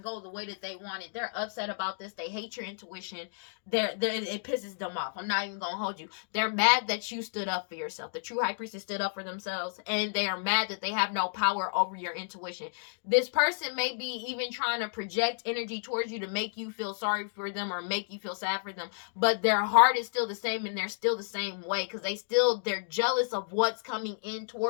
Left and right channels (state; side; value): silent; right; digital silence